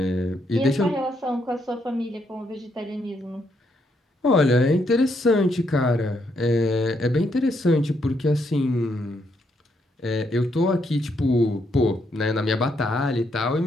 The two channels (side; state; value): both; normal; correlation 0.76